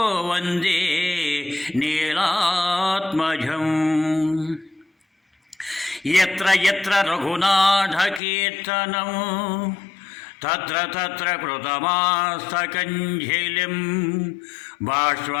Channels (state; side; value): drops out; right; at 8.2 s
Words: वन्दे नीलात्मजम्। यत्र यत्र रघुनाथकीर्तनं तत्र तत्र कृतमास्तकञ्जलिं